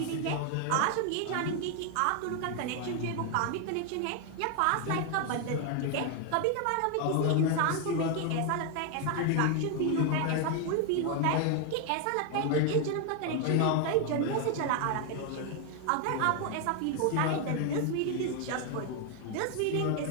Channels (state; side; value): different; both; correlation 0.01